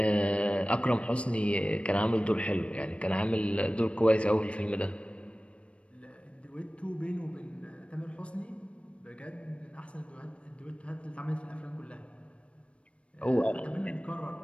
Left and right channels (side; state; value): right; late; 0.061 ms